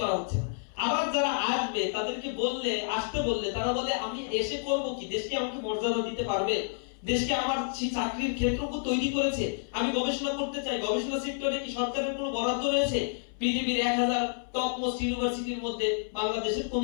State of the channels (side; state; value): right; silent; 58 dB below the other